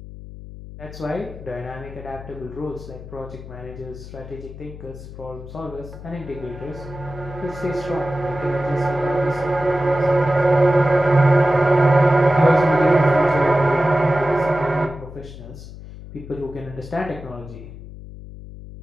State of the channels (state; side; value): noise; left; hum, 14 dB below the sound